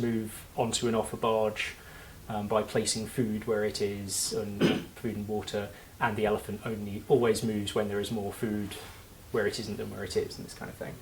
onto and off a barge by placing food where it is, and food and water, and the elephant only always moves when there is more food where it isn't than where it is, and this kind of thing.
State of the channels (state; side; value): identical; both; correlation 1.00